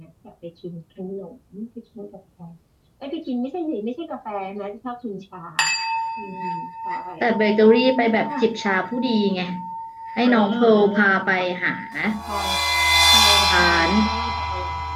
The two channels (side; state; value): both; identical; correlation 1.00